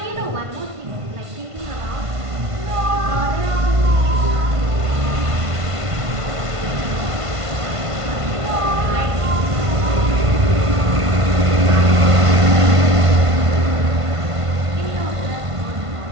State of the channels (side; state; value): left; late; 1.5 ms